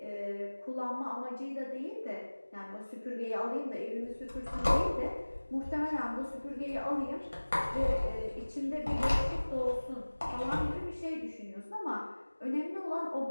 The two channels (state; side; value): inverted; both; correlation -1.00